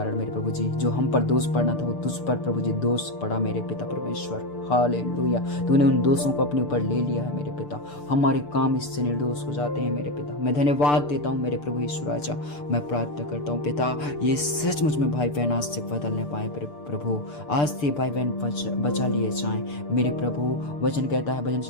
मेरे प्रभु जी जो हम पर दोष पड़ना था वो तुझ पर प्रभु जी दोष पड़ा मेरे पिता परमेश्वर हालेलुया। तूने उन दोषों को अपने ऊपर ले लिया है मेरे पिता। हमारे काम इससे निर्दोष हो जाते हैं मेरे पिता। मैं धन्यवाद देता हूँ मेरे प्रभु यीशु राजा। मैं प्रार्थना करता हूँ पिता, ये सचमुच में भाई बहन आज से बदलने पाए प्रभु। आज से भाई बहन बचा लिए जाएं मेरे प्रभु। वचन कहता है भजन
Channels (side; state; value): right; late; 6.8 ms